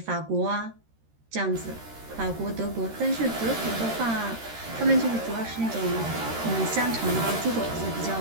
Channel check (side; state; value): left; late; 13 ms